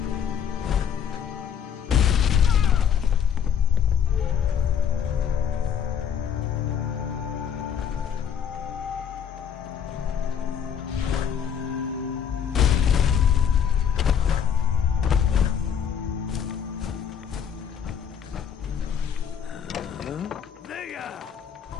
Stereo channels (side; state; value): right; quieter; 8.0 dB